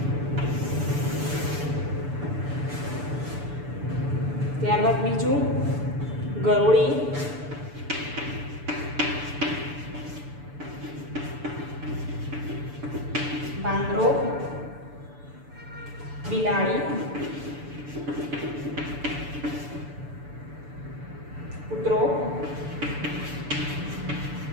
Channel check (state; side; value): late; left; 6.9 ms